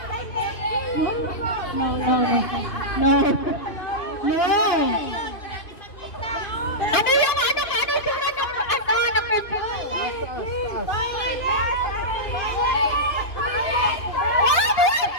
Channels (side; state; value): right; late; 2.5 ms